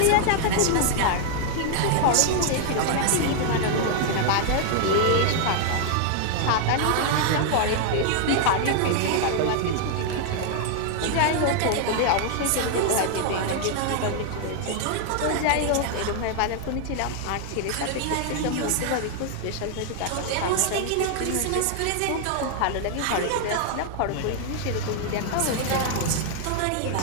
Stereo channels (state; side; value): different; both; correlation 0.00